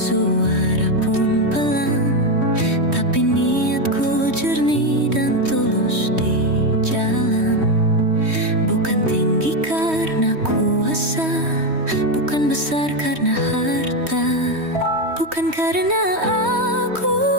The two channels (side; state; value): left; late; 3.2 ms